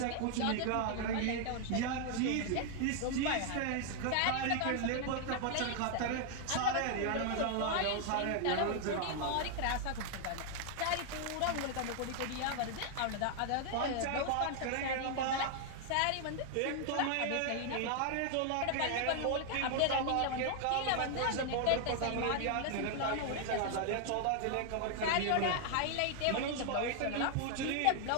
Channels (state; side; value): different; both; correlation 0.00